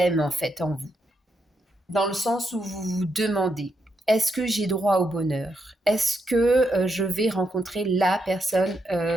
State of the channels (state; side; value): normal; both; correlation 0.81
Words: en fait, en vous. Dans le sens où vous vous demandez, est-ce que j'ai droit au bonheur? Est-ce que je vais rencontrer la personne